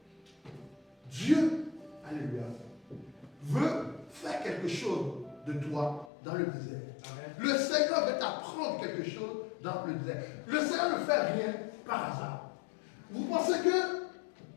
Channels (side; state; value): right; drops out; at 6.1 s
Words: Dieu, alléluia, veut faire quelque chose de toi dans le désert. Amen. Le Seigneur veut t'apprendre quelque chose dans le désert. Le Seigneur ne fait rien par hasard. Vous pensez que